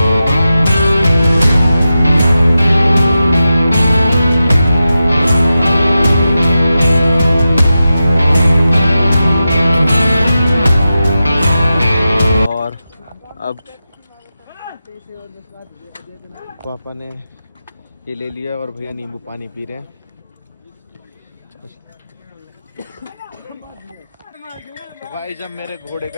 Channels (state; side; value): inverted; both; correlation -0.91